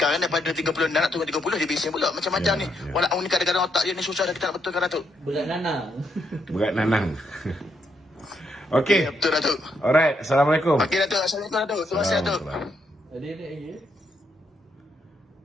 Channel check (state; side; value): normal; both; correlation 0.77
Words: daripada 36 nak turun 30 dia bising pula macam-macam ni. Walaupun ni kadang-kadang otak dia ni susah dah kita nak betulkan Datuk. Berat nanang. Berat nanang. Okey. Betul Datuk. Alright, Assalamualaikum. Okey Datuk, Assalamualaikum Datuk. Terima kasih Datuk. Ada lagi.